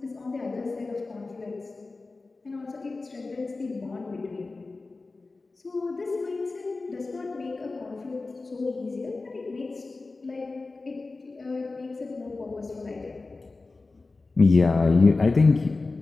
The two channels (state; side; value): quieter; right; 3.6 dB